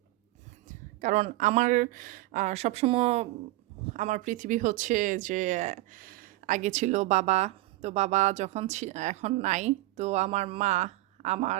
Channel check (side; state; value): left; quieter; 18.1 dB